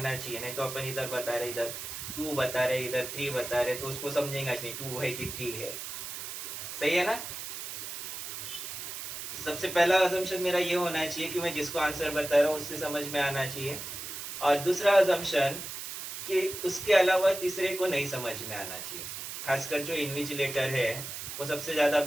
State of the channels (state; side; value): noise; right; hiss, 7 dB below the sound